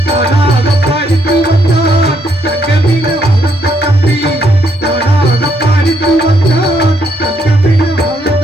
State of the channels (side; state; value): both; normal; correlation 0.73